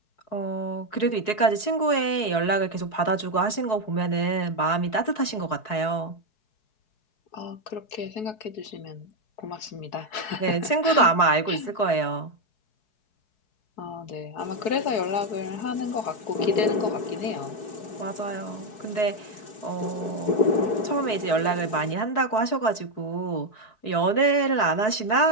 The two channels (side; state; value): right; late; 4.7 ms